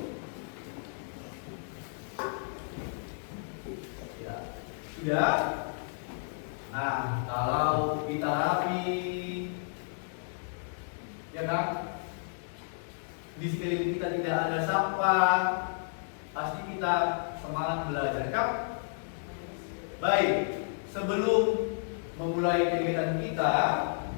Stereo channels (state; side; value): silent; right; 56 dB below the other